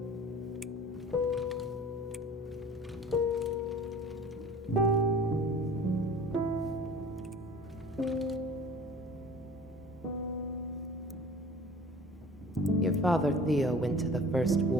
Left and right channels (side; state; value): both; normal; correlation 0.45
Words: Your father, Theo, went to the first